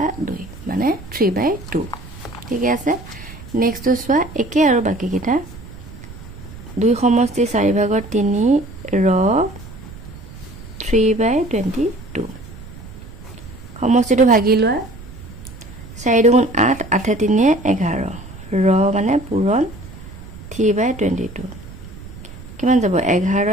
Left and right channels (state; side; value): noise; right; rumble, 16 dB below the sound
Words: 2 মানে 3/2 ঠিক আছে নেক্সট সোৱা একে আৰু বাকি কিটা 2 সমষ্টি 4 ভাগৰ 3 ৰ 3/22 সমষ্টিটো ভাগি লোৱা 4 2 8 8 3 11 ৰ মানে পূৰণ 3/22 কিমান যাব